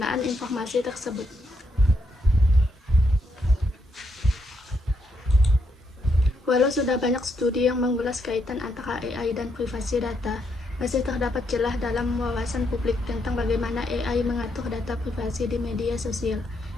informasi tersebut. Walau sudah banyak studi yang mengulas kaitan antara AI dan privasi data, masih terdapat celah dalam wawasan publik tentang bagaimana AI mengatur data privasi di media sosial,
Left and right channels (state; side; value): normal; both; correlation 0.78